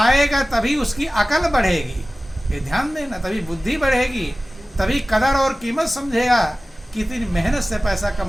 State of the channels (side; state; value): both; normal; correlation 0.97